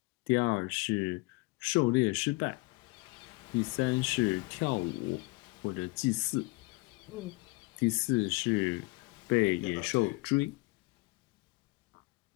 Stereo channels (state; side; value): quieter; right; 25.1 dB